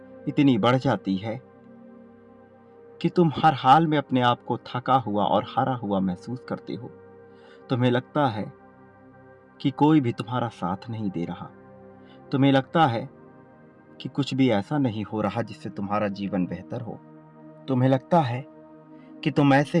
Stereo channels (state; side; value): identical; both; correlation 1.00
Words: इतनी बढ़ जाती है कि तुम हर हाल में अपने आप को थका हुआ और हारा हुआ महसूस करते हो। तुम्हें लगता है कि कोई भी तुम्हारा साथ नहीं दे रहा। तुम्हें लगता है कि कुछ भी ऐसा नहीं हो रहा जिससे तुम्हारा जीवन बेहतर हो। तुम्हें लगता है कि तुम ऐसे